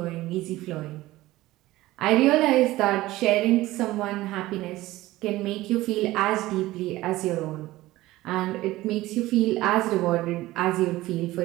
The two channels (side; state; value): left; quieter; 17.3 dB